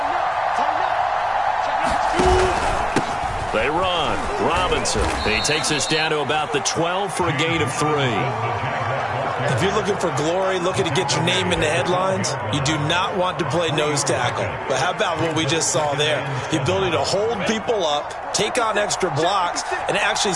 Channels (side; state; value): both; identical; correlation 1.00